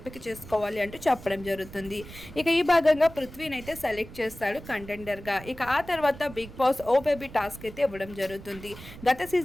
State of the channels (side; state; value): right; noise; rumble, 16 dB below the sound